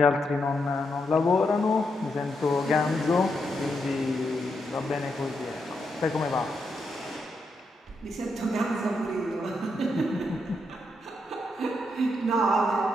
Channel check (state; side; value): normal; both; correlation 0.81